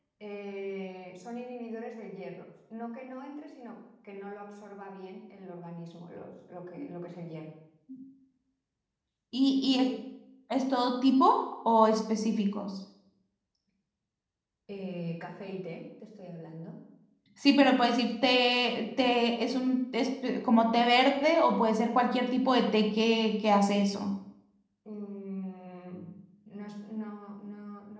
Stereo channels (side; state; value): both; identical; correlation 1.00